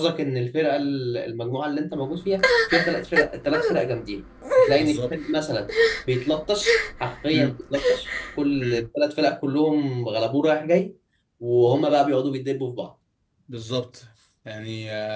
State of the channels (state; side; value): identical; both; correlation 1.00